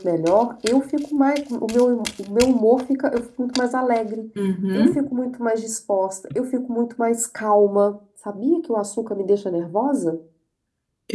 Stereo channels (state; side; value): identical; both; correlation 1.00